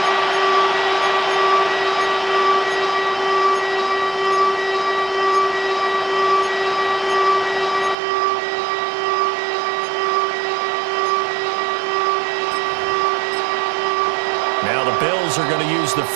Now the Bills are going to use the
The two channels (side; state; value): left; drops out; at 8.0 s